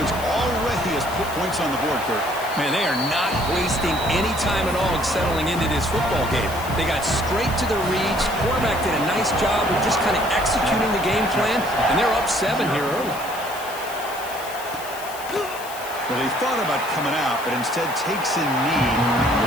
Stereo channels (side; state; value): left; noise; hiss, 14 dB below the sound